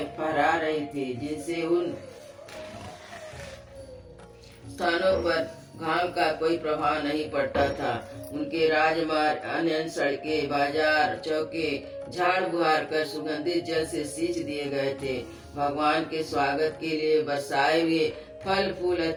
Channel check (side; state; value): both; identical; correlation 1.00